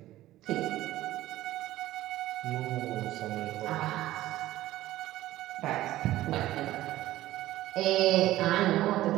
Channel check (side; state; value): left; quieter; 15.4 dB